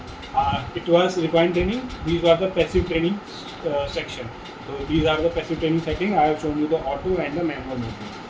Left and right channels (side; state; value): both; identical; correlation 1.00